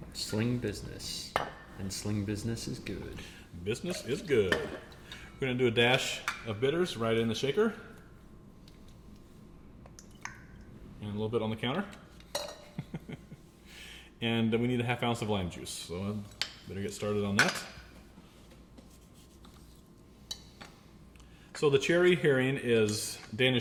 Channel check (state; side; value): identical; both; correlation 1.00